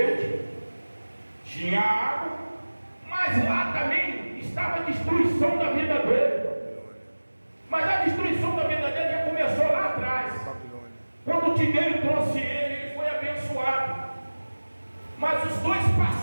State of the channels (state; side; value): inverted; both; correlation -1.00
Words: tinha água, mas lá também estava a destruição da vida dele. Mas a destruição da vida dele já começou lá atrás. Quando o Tiberio trouxe ele, ele foi abençoado. Mas os dois